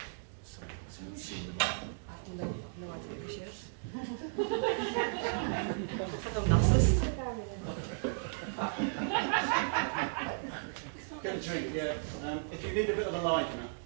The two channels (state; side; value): silent; left; digital silence